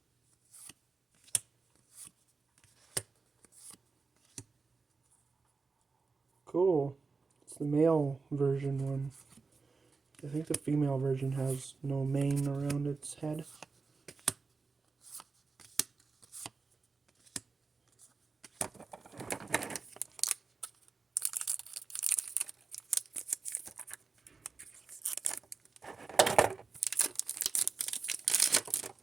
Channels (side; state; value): left; quieter; 4.4 dB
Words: Cool. It's the male version one. I think the female version has no mane around its head.